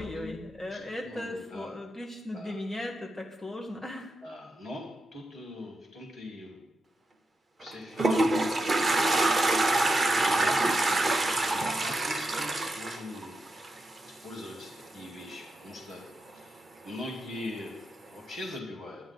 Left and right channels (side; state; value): both; normal; correlation 0.87